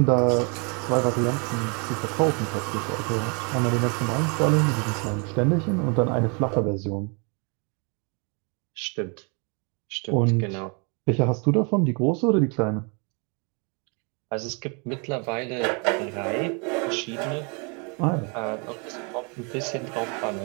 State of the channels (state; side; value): quieter; left; 34.6 dB